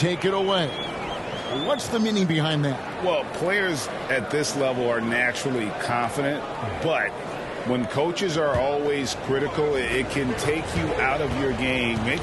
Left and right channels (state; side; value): identical; both; correlation 1.00